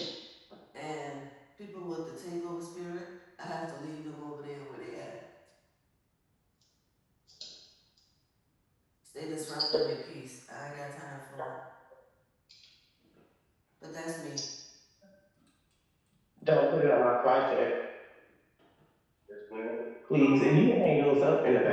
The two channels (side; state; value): both; identical; correlation 1.00